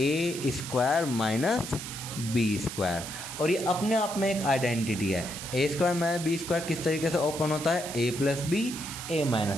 माइनस b², और ये अपने आप में एक आइडेंटिटी है। a² माइनस b² किस तरीके से ओपन होता है a plus b a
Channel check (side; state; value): right; noise; hiss, 9 dB below the sound